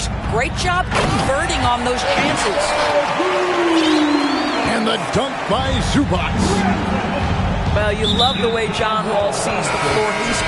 Great job converting on those chances. And the dunk by Zubac. Well, you love the way John Wall sees the floor. He's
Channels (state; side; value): identical; both; correlation 1.00